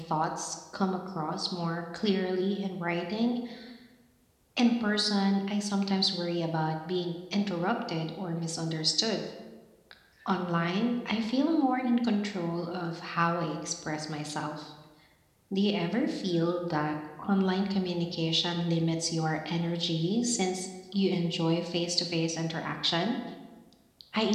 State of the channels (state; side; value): identical; both; correlation 1.00